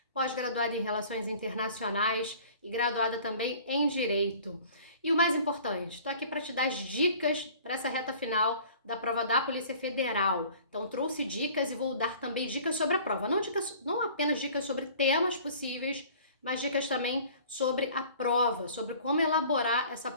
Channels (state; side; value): inverted; both; correlation -0.48